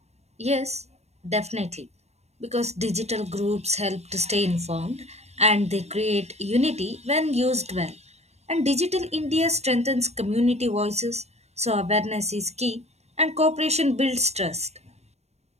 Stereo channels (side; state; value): left; late; 0.31 ms